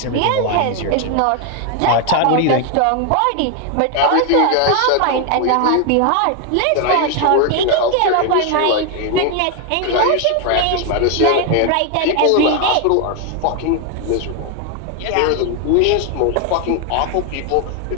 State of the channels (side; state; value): both; different; correlation 0.01